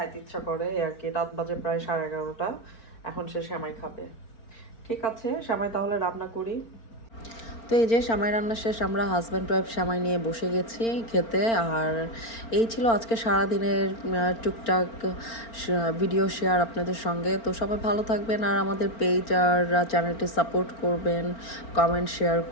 ইচ্ছা করে আর কি। রাত বাজে প্রায় 11:30, এখন সে সেমাই খাবে। ঠিক আছে, সেমাই তাহলে রান্না করি। তো এই যে সেমাই রান্না শেষ, আমরা হাজব্যান্ড ওয়াইফ সেমাই নিয়ে বসে গেছি খেতে। আর এই ছিল আজকে সারাদিনের টুকটাক ভিডিও শেয়ার আপনাদের সঙ্গে। তো সবাই ভালো থাকবেন, আর আমাদের পেজ আর চ্যানেলটি সাপোর্ট করবেন, কমেন্ট শেয়ার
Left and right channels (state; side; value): late; right; 4.4 ms